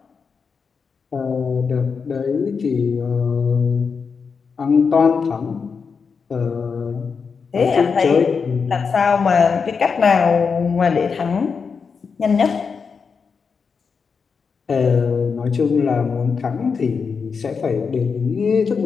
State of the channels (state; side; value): quieter; right; 5.6 dB